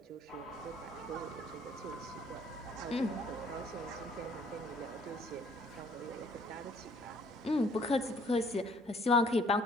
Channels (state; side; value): normal; both; correlation 0.59